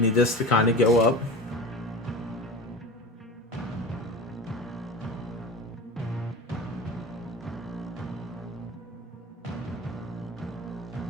this to kind of go up.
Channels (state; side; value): normal; both; correlation 0.32